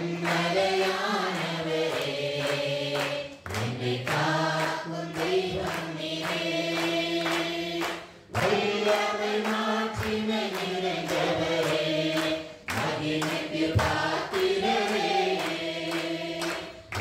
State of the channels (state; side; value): identical; both; correlation 1.00